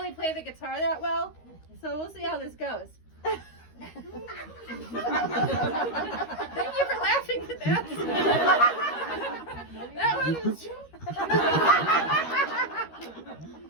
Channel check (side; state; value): right; late; 13 ms